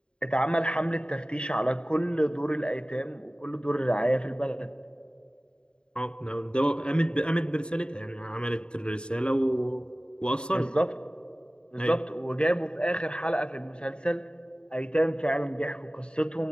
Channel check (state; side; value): late; right; 0.051 ms